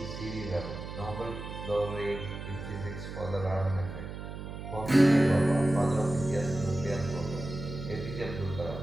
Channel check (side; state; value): right; noise; hum, 9 dB below the sound